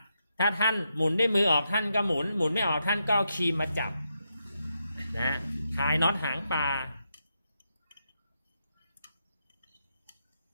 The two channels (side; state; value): both; inverted; correlation -0.83